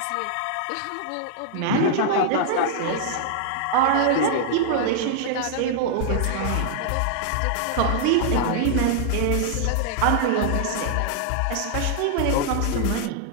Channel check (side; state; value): both; different; correlation -0.01